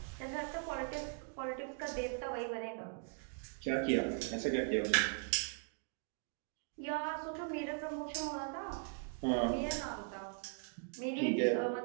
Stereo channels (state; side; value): silent; left; 51 dB below the other